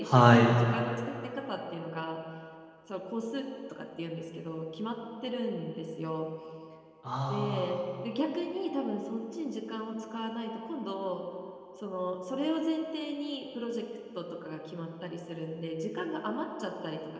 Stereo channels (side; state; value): both; identical; correlation 1.00